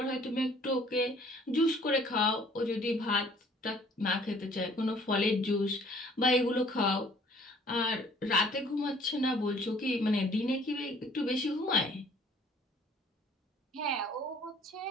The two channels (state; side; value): normal; both; correlation 0.57